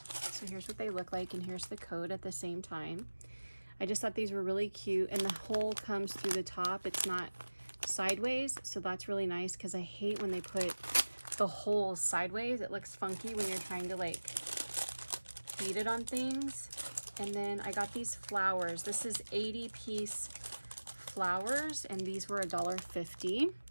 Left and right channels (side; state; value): both; inverted; correlation -1.00